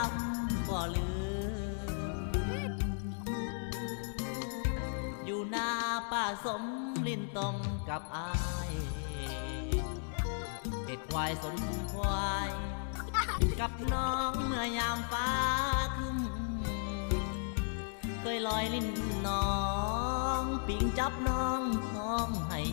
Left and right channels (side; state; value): right; silent; digital silence